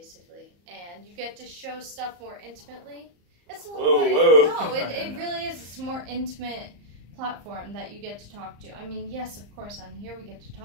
and you get to show stuff more intimately. It's a little whoa. No, it really is. It's a more intimate platform that you get to talk to. I mean, yes, of course, on here we get to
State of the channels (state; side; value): late; left; 34 ms